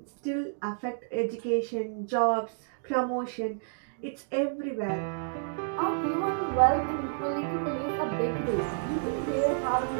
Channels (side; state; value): left; silent; digital silence